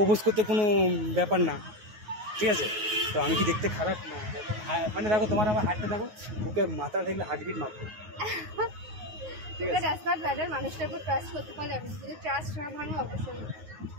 করতে কোনো ব্যাপার না, ঠিক আছে? তো আমি কি দেখতে খারাপ না? মানে দেখো তোমার আমার হার্টটা দেখো, ওকে মাথা দেখলে হার্টবিট মারবো, ঠিক আছে? মানুষটার উপর ট্রাস্ট করতে পারলে, আমি যদি ট্রাস্ট না ভাঙো অবশ্যই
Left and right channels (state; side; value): late; left; 9.5 ms